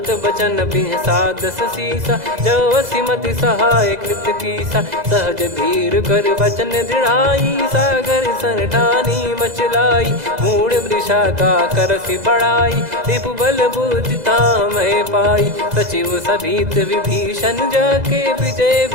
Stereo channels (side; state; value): left; late; 2.0 ms